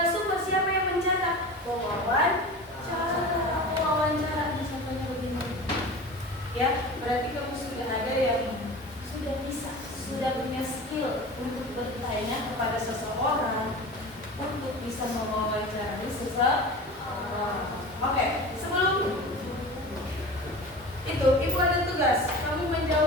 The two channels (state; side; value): normal; both; correlation 0.34